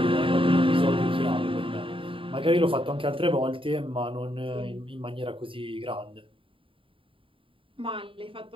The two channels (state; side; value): late; left; 0.25 ms